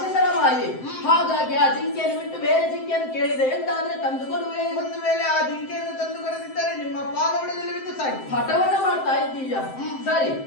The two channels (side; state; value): right; late; 7.7 ms